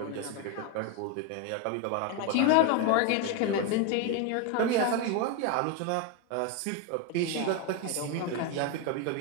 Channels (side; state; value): both; different; correlation 0.01